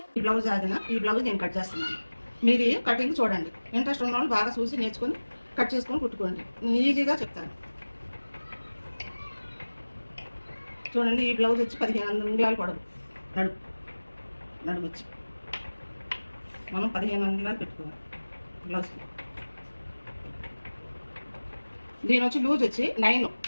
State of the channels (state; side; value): inverted; both; correlation -1.00